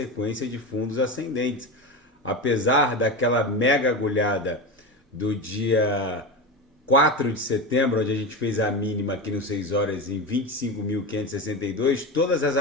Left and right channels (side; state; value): both; normal; correlation 0.21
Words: de fundos ascendentes. Apesar daquela mega agulhada do dia 4 de setembro, onde a gente fez a mínima aqui no 6 horas em 25.562, todas as